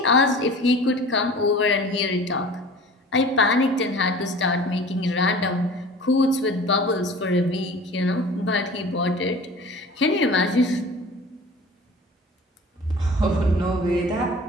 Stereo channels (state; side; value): normal; both; correlation 0.41